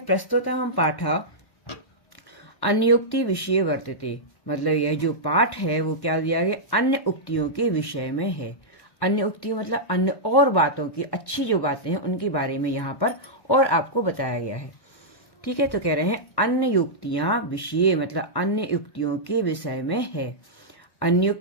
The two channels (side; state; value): right; late; 1.1 ms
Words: प्रस्तुतः पाठा अन्योक्ति विषय वर्तते, मतलब यह जो पाठ है वो क्या दिया गया? अन्य उक्तियों के विषय में है। अन्य उक्ति मतलब अन्य और बातों की, अच्छी जो बातें हैं उनके बारे में यहाँ पर और आपको बताया गया है। ठीक है, तो कह रहे हैं अन्य युक्तियां विषय, मतलब अन्य युक्तियों के विषय में है।